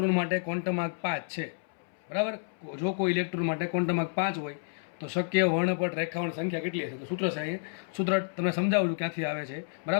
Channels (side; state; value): right; silent; 58 dB below the other